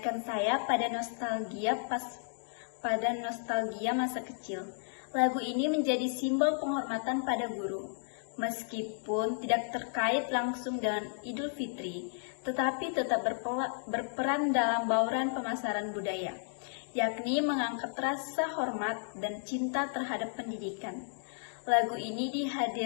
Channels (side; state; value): right; silent; digital silence